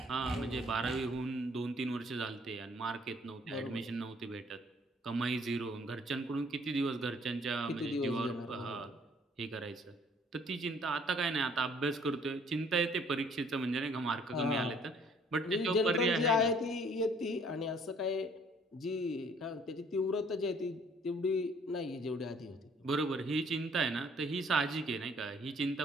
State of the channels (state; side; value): normal; both; correlation 0.59